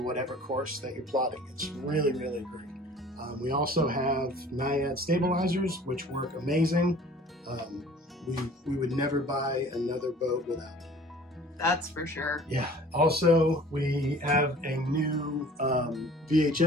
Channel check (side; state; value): both; normal; correlation 0.48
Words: whatever course that you're plotting. It's really great. We also have NAIAD stabilizers, which work amazing. We would never buy another boat without it. That's for sure. Yeah. Also, we have a new